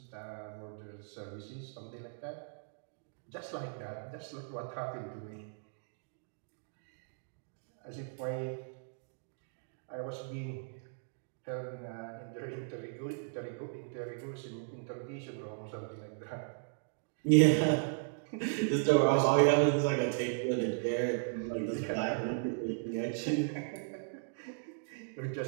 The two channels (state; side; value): silent; left; digital silence